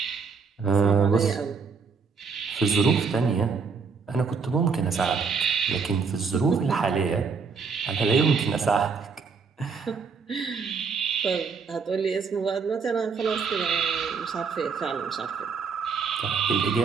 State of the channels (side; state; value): left; quieter; 5.4 dB